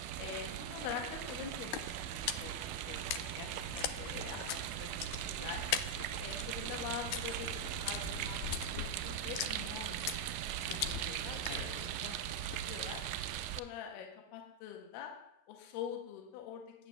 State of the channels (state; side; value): late; right; 12 ms